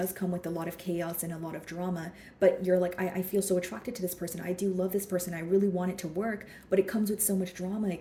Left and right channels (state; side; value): identical; both; correlation 1.00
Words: come with a lot of chaos and a lot of drama, but you're like, I feel so attracted to this person. I do love this person. I really want it to work, but it comes with so much drama.